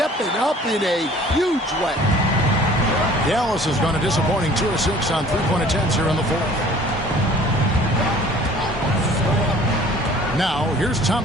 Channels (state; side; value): normal; both; correlation 0.51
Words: up in a huge way. Dallas has gone a disappointing 2 of 6 on 3-point attempts here in the 4th. Now, here's